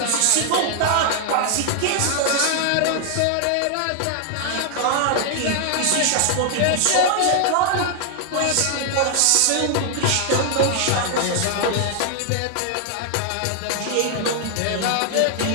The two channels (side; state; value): both; different; correlation 0.00